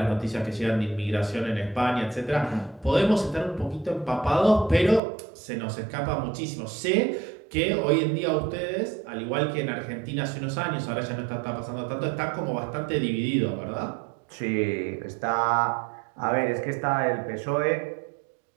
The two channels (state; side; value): drops out; left; at 5.0 s